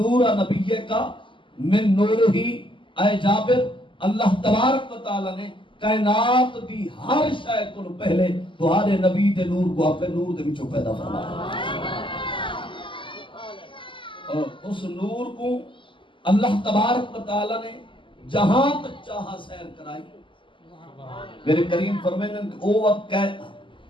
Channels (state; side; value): late; right; 0.25 ms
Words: نبی کا من نور ہی اے جابر اللہ تبارک و تعالیٰ نے کائنات دی ہر شے کو پہلے تمہارے نبی دے نور کو اپنے نور دے وچوں پیدا فرمایا اور اس نور کو اللہ تبارک و تعالیٰ نے جہاں تک چاہا سیر کرائی میرے کریم فرمائیں کہ